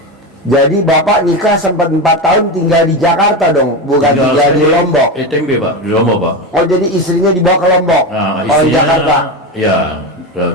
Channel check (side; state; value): both; normal; correlation 0.18